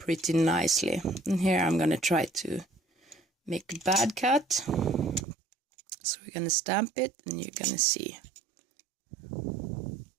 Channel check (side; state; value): left; drops out; at 5.2 s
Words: nicely. And here I'm gonna try to make a bad cut. So we're gonna stamp it and you're gonna see.